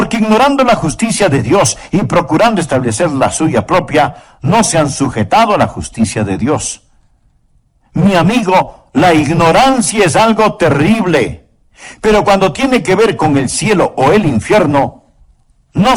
ignorando la justicia de Dios y procurando establecer la suya propia, no se han sujetado a la justicia de Dios. Mi amigo, la ignorancia es algo terrible. Pero cuando tiene que ver con el cielo o el infierno, no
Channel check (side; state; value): both; identical; correlation 1.00